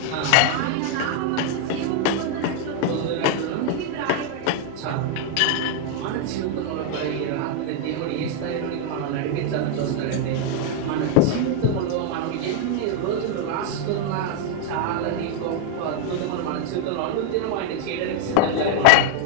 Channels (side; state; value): both; different; correlation 0.00